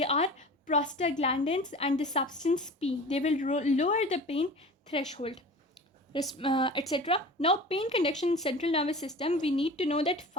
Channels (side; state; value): both; normal; correlation 0.37